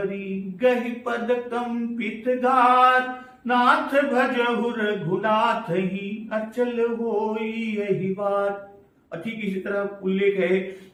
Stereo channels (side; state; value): both; identical; correlation 1.00